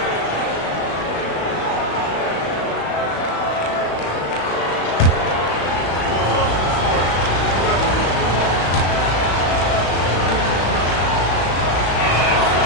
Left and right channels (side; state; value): right; late; 35 ms